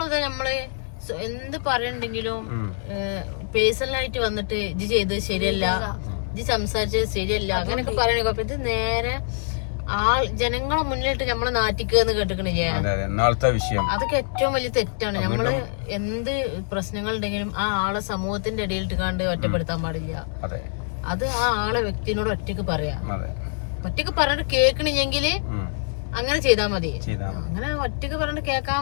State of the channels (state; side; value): silent; right; 62 dB below the other